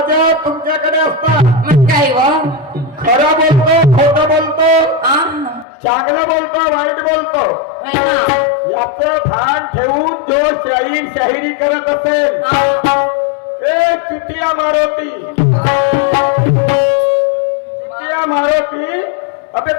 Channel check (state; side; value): drops out; right; at 5.7 s